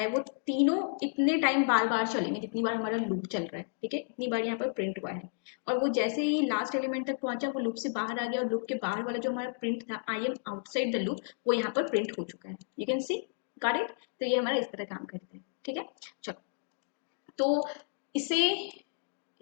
वो तीनों इतने टाइम बार बार चलेंगे जितनी बार हमारा लूप चल रहा है, ठीक है। इतनी बार यहाँ पर प्रिंट हुआ है और वो जैसे ही लास्ट एलिमेंट तक पहुंचा वो लूप से बाहर आ गया और लूप के बाहर वाला जो हमारा प्रिंट था I am outside the loop, वो यहाँ पर प्रिंट हो चुका है, you can see, got it. तो ये हमारा इस तरह काम करता है, ठीक है। चलो तो इसे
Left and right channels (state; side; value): silent; right; digital silence